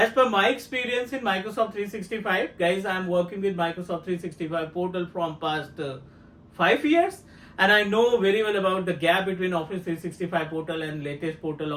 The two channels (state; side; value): identical; both; correlation 1.00